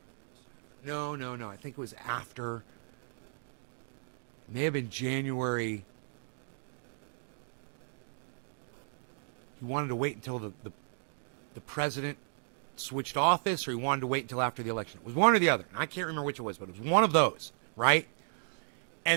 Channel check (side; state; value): left; silent; digital silence